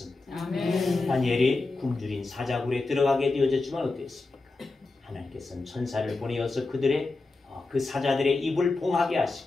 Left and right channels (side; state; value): right; quieter; 3.4 dB